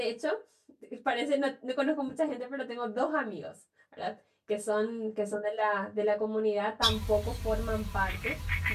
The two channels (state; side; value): identical; both; correlation 1.00